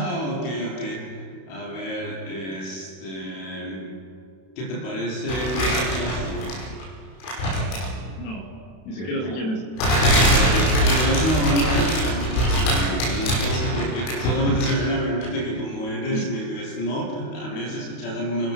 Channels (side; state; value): right; late; 32 ms